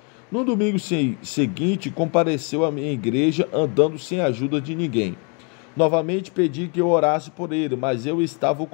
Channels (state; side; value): quieter; right; 35.4 dB